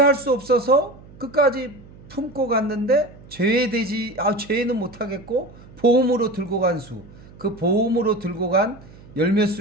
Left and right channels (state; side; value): noise; right; hum, 21 dB below the sound